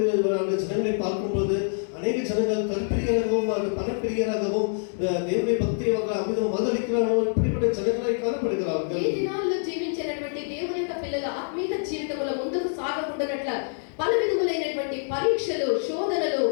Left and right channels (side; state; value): right; silent; digital silence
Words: அந்த ஜனங்களை பார்க்கும்போது அநேக ஜனங்கள் தற்பிரியராகவும் பணப்பிரியராகவும் தேவனுடைய பக்தியை அமிதம் மதளிக்கிறார்கள். இப்படிப்பட்ட ஜனங்களை காணப்படுகிறார்கள். ఈ దినాల్లో జీవించినటువంటి దేవుని యొక్క పిల్లల ఆత్మీయ జీవితంలో ముందుకు సాగకుండానట్ల పలు విధములైనటువంటి పరీక్షలు, శోధనలు,